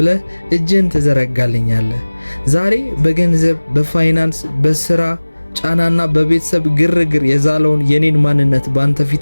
እጅን ትዘረጋልኛለህ። ዛሬ በገንዘብ፣ በፋይናንስ፣ በሥራ ጫናና በቤተሰብ ግርግር የዛለውን የኔን ማንነት ባንተ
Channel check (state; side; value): inverted; both; correlation -1.00